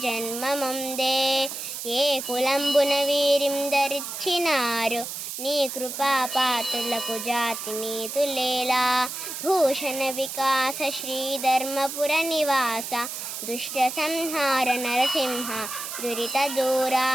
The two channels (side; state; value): right; noise; hiss, 7 dB below the sound